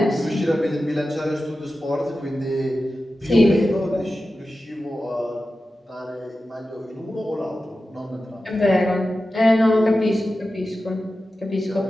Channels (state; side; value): normal; both; correlation 0.93